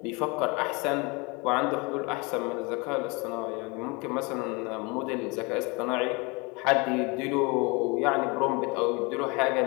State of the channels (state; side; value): quieter; right; 28.3 dB